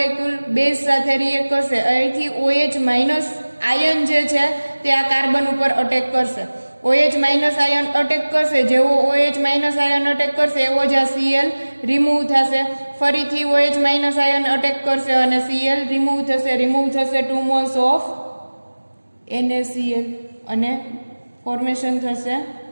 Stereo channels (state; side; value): inverted; both; correlation -1.00